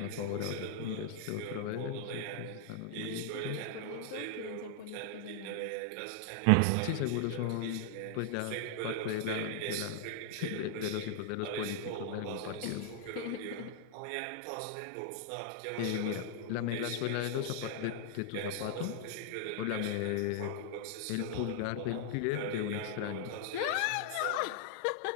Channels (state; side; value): different; both; correlation 0.00